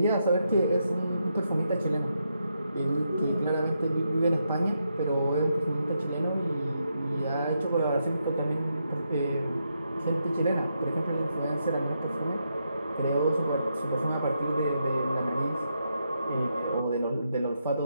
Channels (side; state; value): both; inverted; correlation -0.82